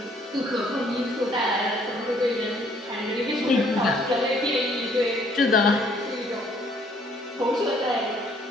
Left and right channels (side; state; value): both; normal; correlation 0.63